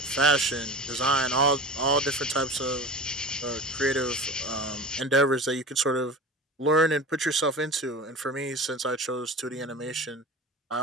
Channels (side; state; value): both; normal; correlation 0.33